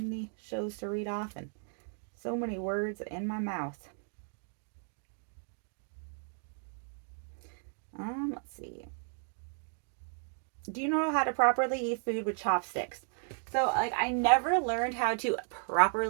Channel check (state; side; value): silent; left; 55 dB below the other